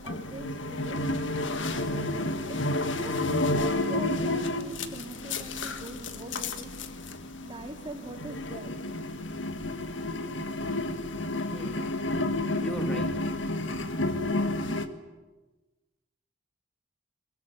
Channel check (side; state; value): both; normal; correlation 0.26